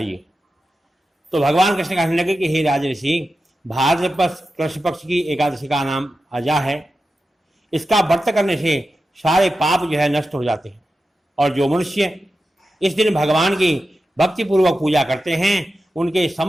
तो भगवान कृष्ण कहने लगे कि हे राजऋषि, भाद्रपद कृष्ण पक्ष की एकादशी का नाम अजा है। इसका व्रत करने से सारे पाप जो है नष्ट हो जाते हैं, और जो मनुष्य इस दिन भगवान की भक्तिपूर्वक पूजा करते हैं उनके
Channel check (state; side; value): normal; both; correlation 0.92